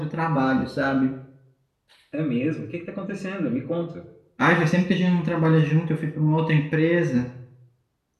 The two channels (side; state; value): both; identical; correlation 1.00